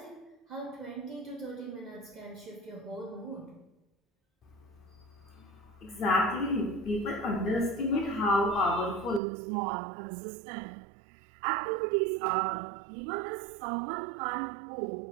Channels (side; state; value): left; drops out; at 9.2 s